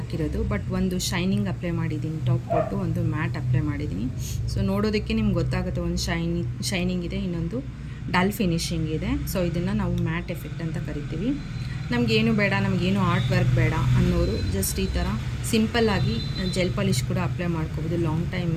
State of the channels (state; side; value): identical; both; correlation 1.00